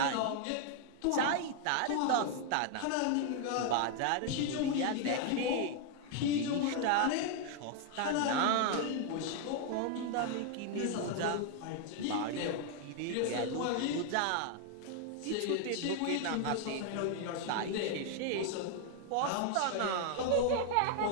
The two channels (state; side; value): different; both; correlation 0.00